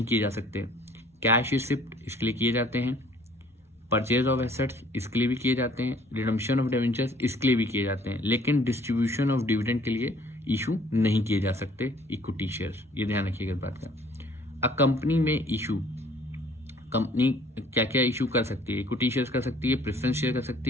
किए जा सकते, कैश रिसिप्ट इसके लिए किए जाते हैं, परचेज ऑफ एसेट्स इसके लिए भी किए जाते हैं, रिडम्पशन ऑफ डिवेंचर्स इसके लिए भी किए जाते हैं, लेकिन डिस्ट्रीब्यूशन ऑफ डिविडेंड के लिए इशू नहीं किए जा सकते इक्विटी शेयर्स, ये ध्यान रखिएगा इस बात का। अ कंपनी में इशू, कंपनी क्या क्या इशू कर सकती है, इक्विटी शेयर कर सकती है, प्रेफरेंस शेयर कर सकती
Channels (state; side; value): normal; both; correlation 0.57